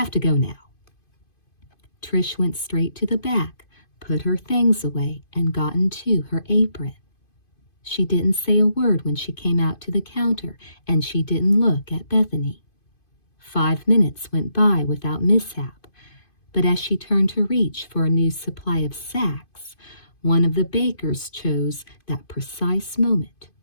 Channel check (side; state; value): right; late; 2.5 ms